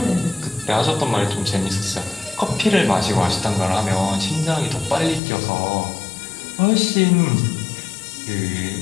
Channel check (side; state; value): right; drops out; at 5.2 s